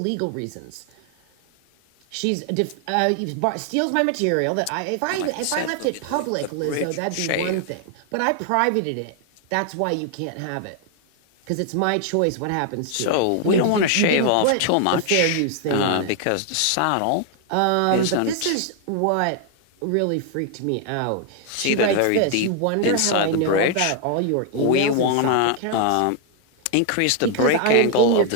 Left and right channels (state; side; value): different; both; correlation 0.00